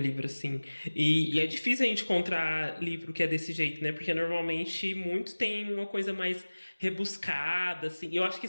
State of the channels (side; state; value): both; inverted; correlation -1.00